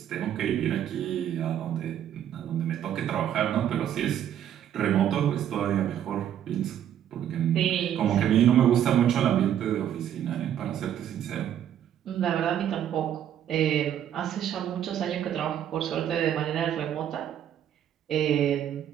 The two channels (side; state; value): left; quieter; 10.3 dB